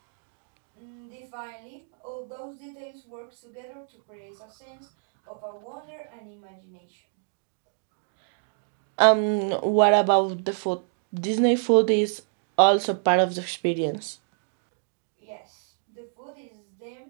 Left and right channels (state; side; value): silent; left; digital silence